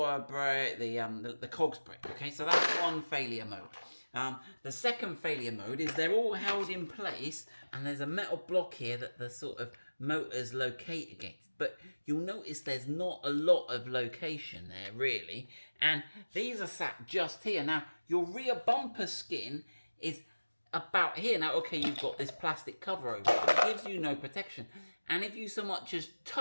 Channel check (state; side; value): inverted; both; correlation -1.00